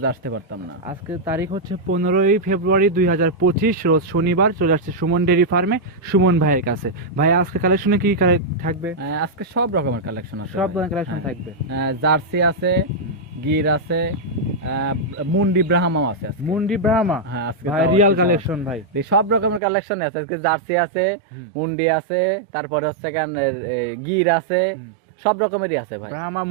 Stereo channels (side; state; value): left; drops out; at 19.6 s